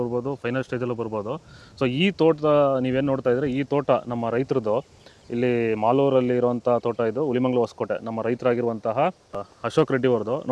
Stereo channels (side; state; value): both; identical; correlation 1.00